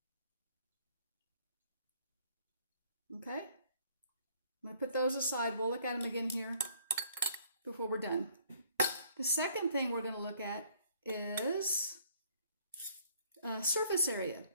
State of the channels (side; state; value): both; inverted; correlation -0.61